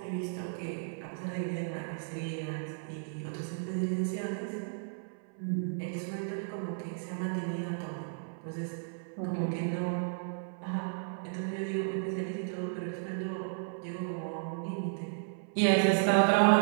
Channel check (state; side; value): silent; left; 55 dB below the other